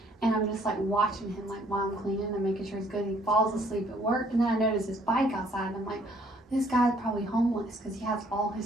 And I'm just like watching him, like while I'm cleaning and making sure he's good. He falls asleep at work, and then I notice his bike outside, and I'm like, this guy's probably homeless because he has all his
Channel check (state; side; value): normal; both; correlation 0.63